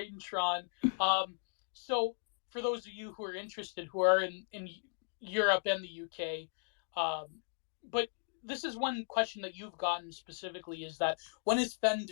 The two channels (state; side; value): silent; right; digital silence